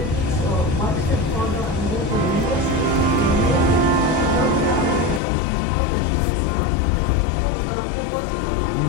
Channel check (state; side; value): drops out; right; at 5.2 s